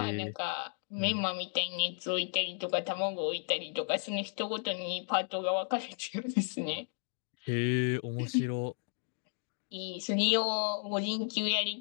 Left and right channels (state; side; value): silent; right; 55 dB below the other